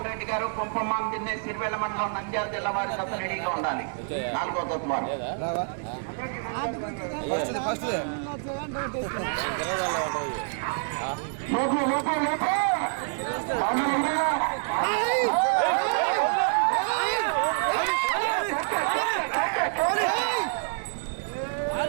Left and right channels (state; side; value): silent; left; digital silence